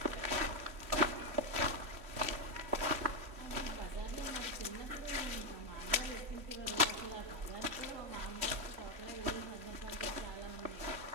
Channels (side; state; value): left; late; 3.2 ms